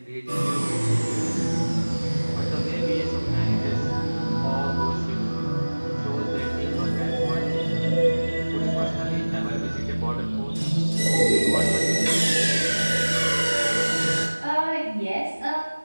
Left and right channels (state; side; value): inverted; both; correlation -1.00